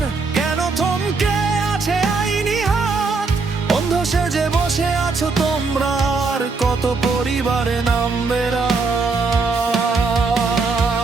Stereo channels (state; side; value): quieter; left; 4.2 dB